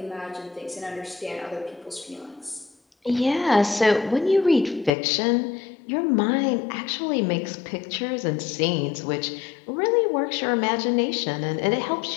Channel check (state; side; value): drops out; right; at 4.9 s